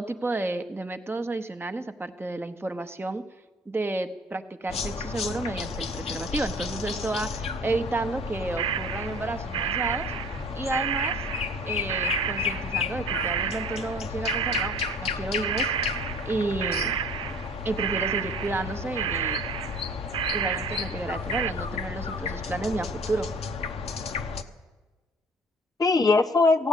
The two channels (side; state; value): both; normal; correlation 0.50